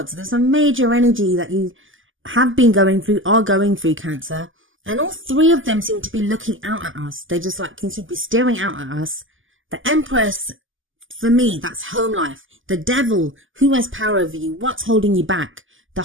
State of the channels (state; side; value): late; left; 0.58 ms